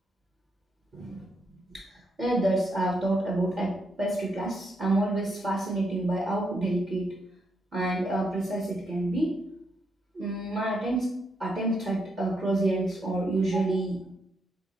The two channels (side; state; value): both; normal; correlation 0.78